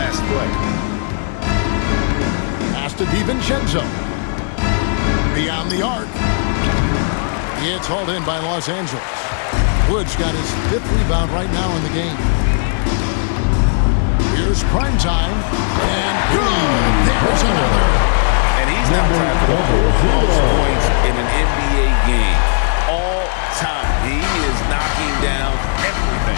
play. Pass to DiVincenzo. Beyond the arc. It's hauled in by Los Angeles. Woods got his 5th rebound right now in the game. Here's Primetime. And good. There's another. And he's now tied for the 4th most points in an NBA game all time. He is knocking down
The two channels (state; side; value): silent; right; digital silence